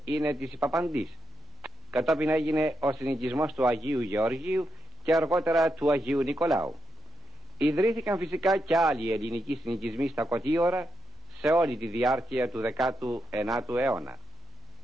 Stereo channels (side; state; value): both; normal; correlation 0.84